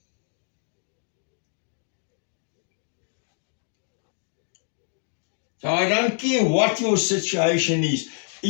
So I don't care what your situation is.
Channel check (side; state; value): right; silent; 60 dB below the other